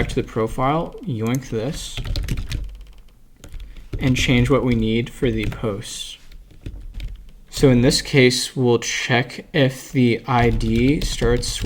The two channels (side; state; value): both; identical; correlation 1.00